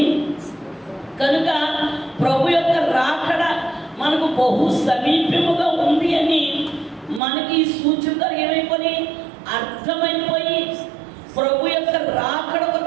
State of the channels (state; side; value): drops out; left; at 7.2 s